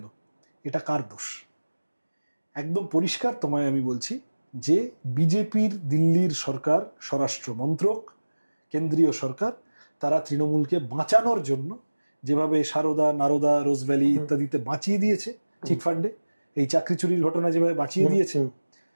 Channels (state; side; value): inverted; both; correlation -1.00